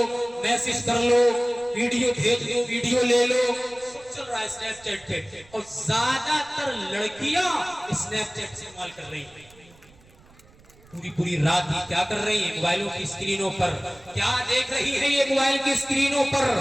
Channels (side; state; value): right; noise; rumble, 27 dB below the sound